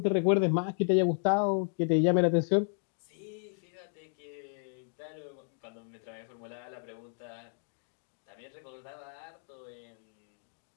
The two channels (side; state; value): right; silent; digital silence